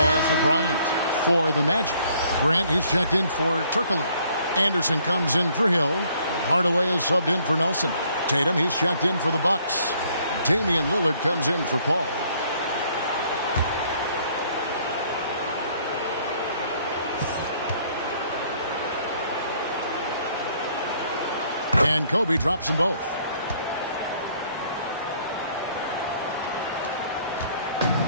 for Bryant. For the Magic, Grant, he's checked in for Turkoglu. Anderson comes in for Hill. Hardaway is subbed in for Nelson. Tatum, he's checked in for the Bucks. Damian Lillard comes in for Paul. And Kobe drops them both.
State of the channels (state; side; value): inverted; both; correlation -0.63